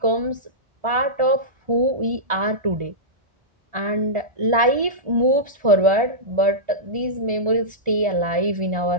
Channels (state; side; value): normal; both; correlation -0.14